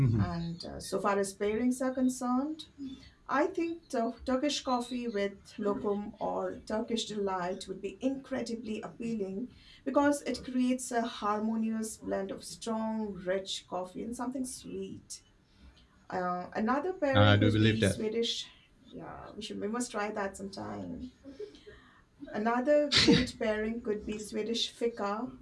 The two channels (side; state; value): both; identical; correlation 1.00